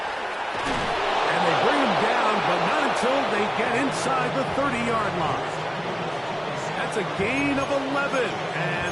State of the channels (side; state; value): both; identical; correlation 1.00